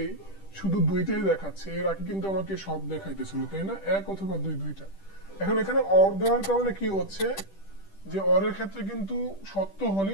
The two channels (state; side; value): late; right; 10 ms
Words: শুধু 2টাই দেখাচ্ছে, এর আগে কিন্তু আমাকে সব দেখাইতেছিল তাই না, 1 অথবা 2, 2টা। এখন এখানে অর দেওয়ার কারণে কি হচ্ছে যে অরের ক্ষেত্রে কিন্তু সত্য